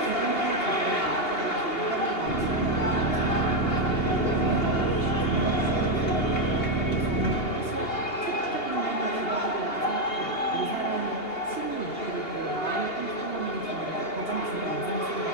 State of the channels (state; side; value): late; right; 2.8 ms